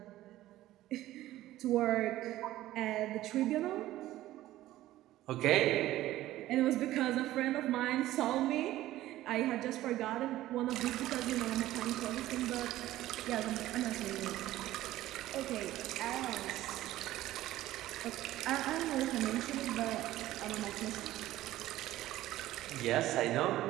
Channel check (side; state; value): left; quieter; 15.1 dB